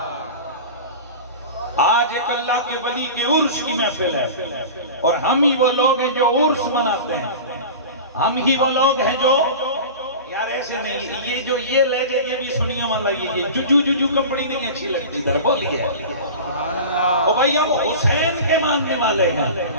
آج ایک اللہ کے ولی کے عرس کی محفل ہے اور ہم ہی وہ لوگ ہیں جو عرس مناتے ہیں، ہم ہی وہ لوگ ہیں جو یار ایسے نہیں، یہ جو یہ لہجے یہ بھی سنیے والا، یہ ججو ججو کپڑی نہیں اچھی لگتی، در بولیے او بھائی ہم حسین کے ماننے والے ہیں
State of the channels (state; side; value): inverted; both; correlation -0.33